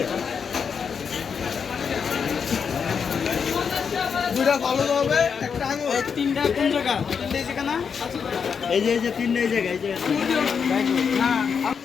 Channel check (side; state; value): right; quieter; 6.4 dB